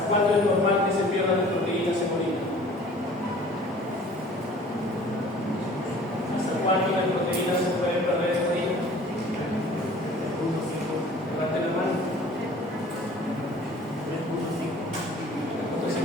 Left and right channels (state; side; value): normal; both; correlation 0.49